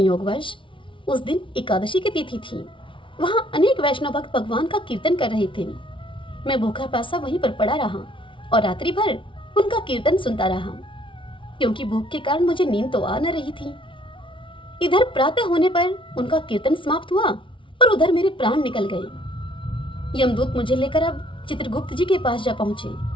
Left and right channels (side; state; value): right; late; 0.25 ms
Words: उस दिन एकादशी की तिथि थी। वहां अनेक वैष्णव भक्त भगवान का कीर्तन कर रहे थे। मैं भूखा प्यासा वहीं पर पड़ा रहा और रात्रि भर उनका कीर्तन सुनता रहा, क्योंकि भूख के कारण मुझे नींद तो आ न रही थी। इधर प्रातः होने पर उनका कीर्तन समाप्त हुआ और उधर मेरे प्राण निकल गए। यमदूत मुझे लेकर अब चित्रगुप्त जी के पास जा पहुंचे।